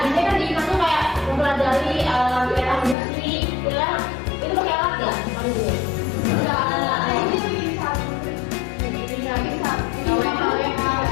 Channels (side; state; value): right; drops out; at 3.0 s